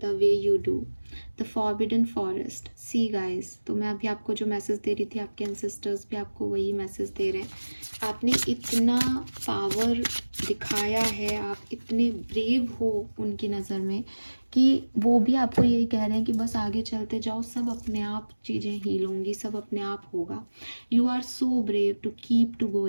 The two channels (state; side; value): inverted; both; correlation -1.00